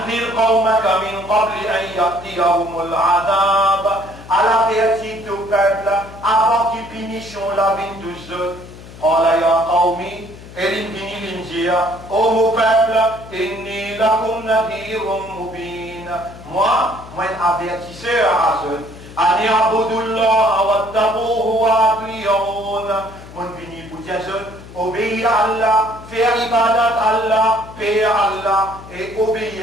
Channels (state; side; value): noise; left; hum, 17 dB below the sound